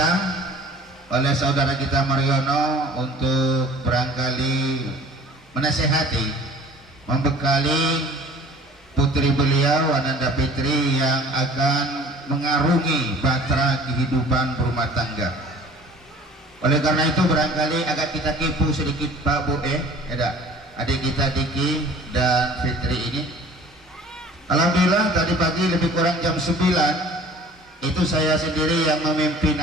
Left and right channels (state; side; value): normal; both; correlation 0.48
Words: oleh saudara kita Mariono untuk barangkali menasehati, membekali putri beliau Ananda Fitri yang akan mengarungi bahtera kehidupan berumah tangga. Oleh karena itu barangkali agak kita kipu sedikit Pak Bu adik kita Diki dan Fitri ini. Alhamdulillah tadi pagi lebih kurang jam 9 itu saya sendiri yang memimpin